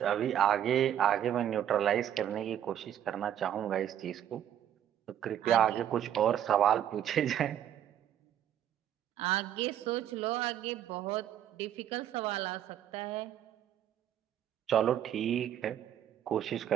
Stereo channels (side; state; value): left; quieter; 10.4 dB